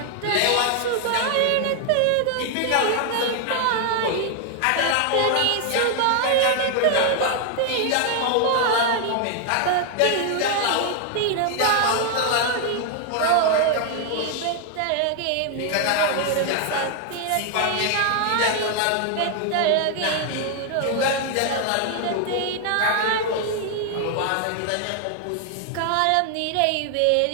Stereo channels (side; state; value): both; different; correlation 0.00